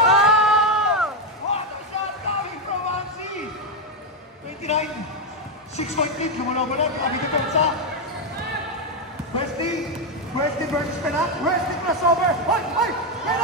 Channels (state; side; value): normal; both; correlation 0.05